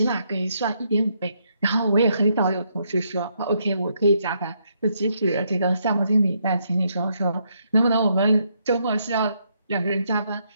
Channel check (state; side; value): inverted; both; correlation -0.76